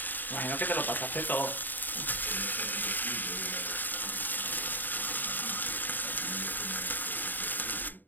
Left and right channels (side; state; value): right; late; 0.089 ms